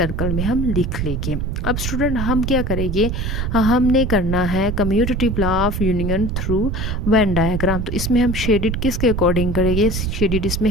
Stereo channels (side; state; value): right; noise; rumble, 2 dB below the sound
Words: में हम लिख लेंगे। अब स्टूडेंट हम क्या करेंगे, हमने करना है commutative law of union through when diagram. तो इसमें हम शेडिड किसके अकॉर्डिंग करेंगे, शेडिड इसमें